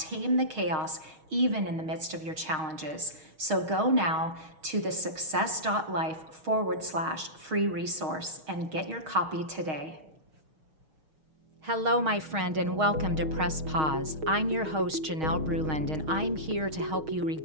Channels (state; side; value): late; left; 6.4 ms